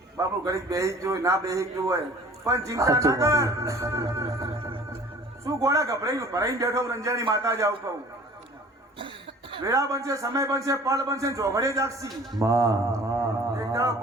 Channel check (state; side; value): normal; both; correlation 0.48